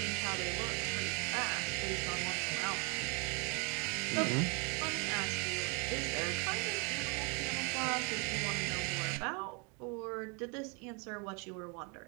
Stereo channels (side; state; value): left; quieter; 33.7 dB